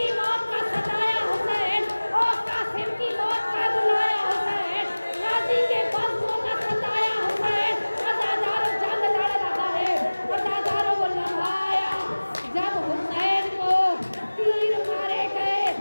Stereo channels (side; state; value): both; inverted; correlation -1.00